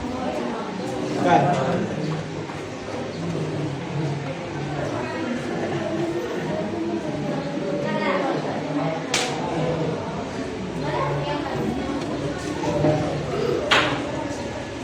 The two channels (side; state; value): both; identical; correlation 1.00